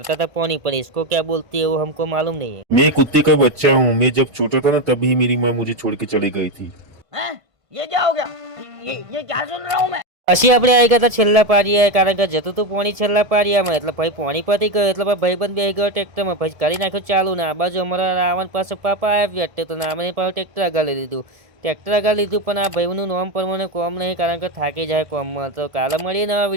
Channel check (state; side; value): late; left; 1.7 ms